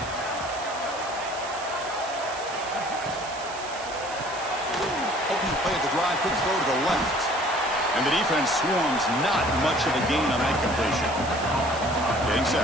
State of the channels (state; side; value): noise; right; hiss, 14 dB below the sound